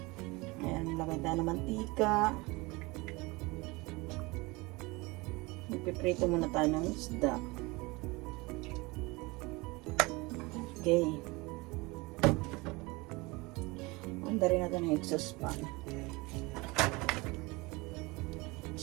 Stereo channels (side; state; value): left; quieter; 24.2 dB